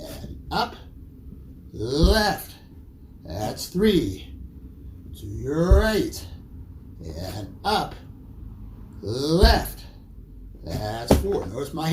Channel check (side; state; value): both; identical; correlation 1.00